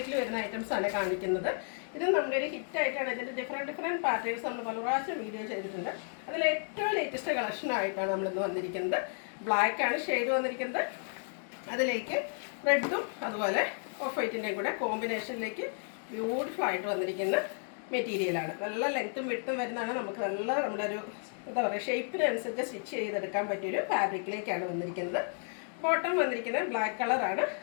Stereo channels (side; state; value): right; silent; 56 dB below the other